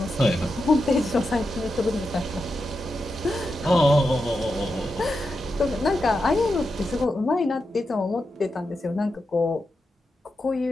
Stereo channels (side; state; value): both; normal; correlation 0.88